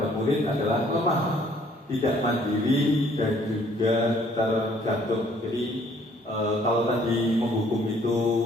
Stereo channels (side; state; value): both; normal; correlation 0.61